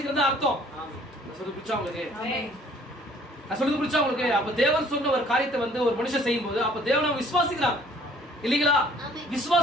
அர்த்தம். சொல்றது புரிச்சா உங்களுக்கு? நான் சொல்றது புரிச்சா உங்களுக்கு? அப்ப தேவன் சொன்ன ஒரு காரியத்தை வந்து ஒரு மனுஷன் செய்யும் போது அப்ப தேவனை விசுவாசிக்கிறான் இல்லீங்களா?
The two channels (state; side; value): normal; both; correlation 0.57